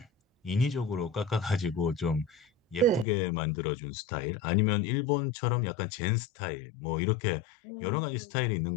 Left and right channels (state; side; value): drops out; right; at 3.1 s